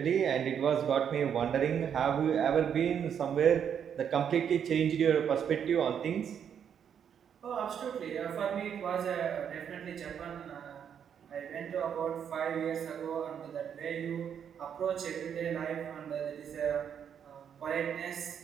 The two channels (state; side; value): quieter; left; 8.2 dB